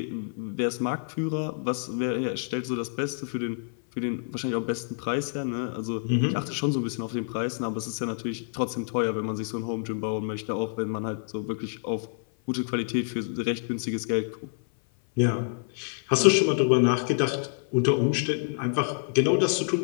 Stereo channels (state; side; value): silent; right; 56 dB below the other